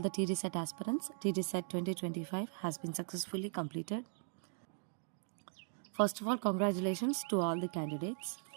the TDSET aspirants. TDSET 2025 has been successfully completed. First of all, congratulations to all the candidates.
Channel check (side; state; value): left; silent; digital silence